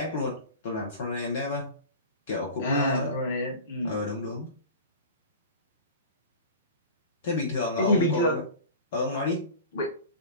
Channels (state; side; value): inverted; both; correlation -0.36